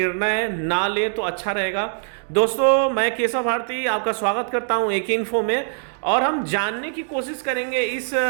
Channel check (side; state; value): left; silent; digital silence